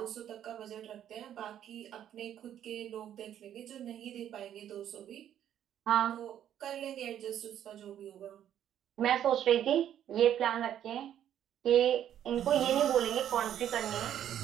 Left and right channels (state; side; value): quieter; left; 10.5 dB